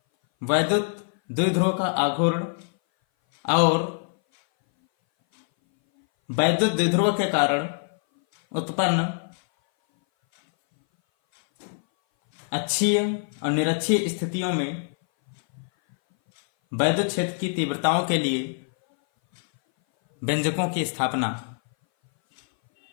वैद्युत द्विध्रुव का आघूर्ण और वैद्युत द्विध्रुव के कारण उत्पन्न अक्षीय और निरक्षीय स्थितियों में वैद्युत क्षेत्र की तीव्रताओं के लिए व्यंजकों की स्थापना।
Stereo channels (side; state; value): right; silent; 59 dB below the other